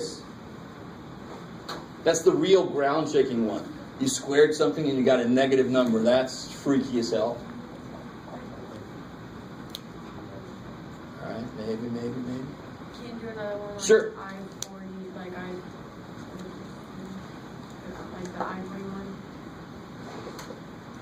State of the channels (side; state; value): both; identical; correlation 1.00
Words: That's the real ground shaking one. You squared something and you got a negative number. That's freaky as hell. Alright, maybe. Can you do another one? Like Sure. I-40, like the I-41?